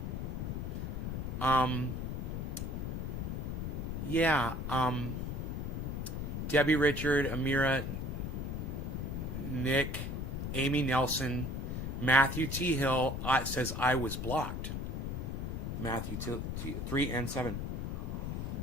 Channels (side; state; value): left; noise; rumble, 3 dB below the sound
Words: Yeah. Debbie, Richard, Amira, Nick, Amy Nelson, Matthew T. Hill says I was blocked. Matthew 3 and 7.